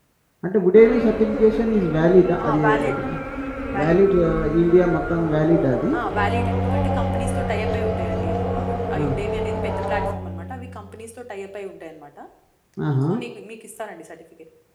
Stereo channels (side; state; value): both; identical; correlation 1.00